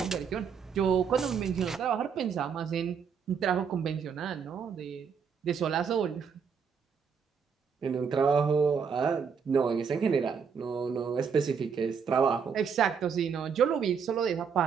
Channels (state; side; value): quieter; left; 6.5 dB